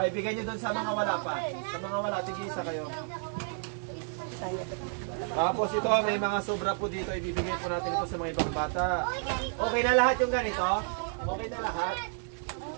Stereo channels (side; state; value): left; silent; 57 dB below the other